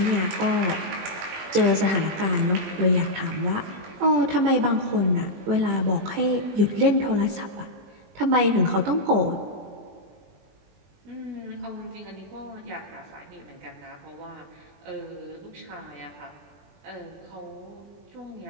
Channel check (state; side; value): late; left; 20 ms